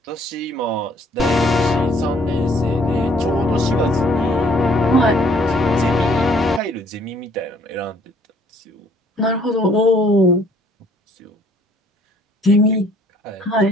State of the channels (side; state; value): both; normal; correlation 0.61